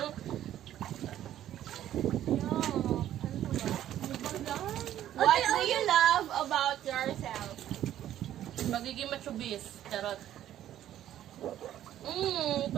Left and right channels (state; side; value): quieter; left; 12.0 dB